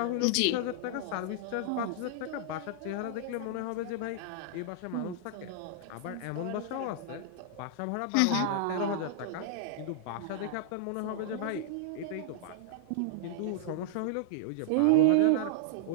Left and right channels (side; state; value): both; different; correlation -0.01